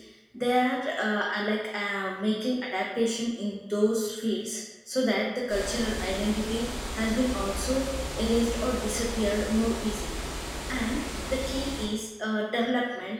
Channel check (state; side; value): identical; both; correlation 1.00